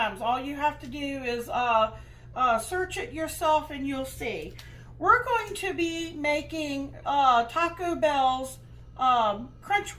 All you have to do is search it yourself and you'll see. We're going to be making Taco Bell's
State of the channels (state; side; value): identical; both; correlation 1.00